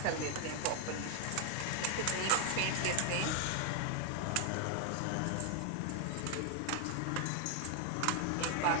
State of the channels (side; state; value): both; different; correlation 0.00